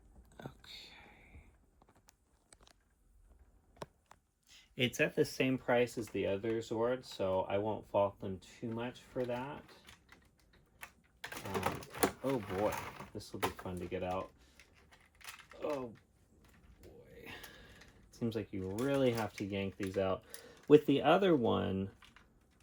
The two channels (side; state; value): both; identical; correlation 1.00